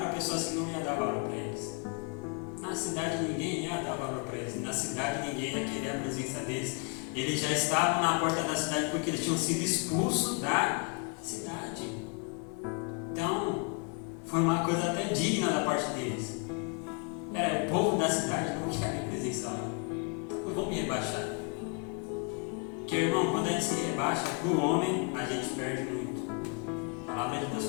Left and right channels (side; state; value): right; quieter; 35.6 dB